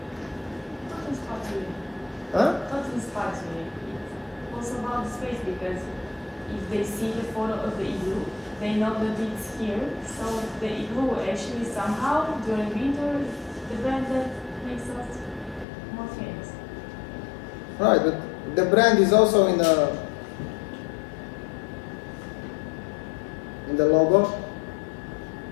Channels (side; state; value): right; drops out; at 15.7 s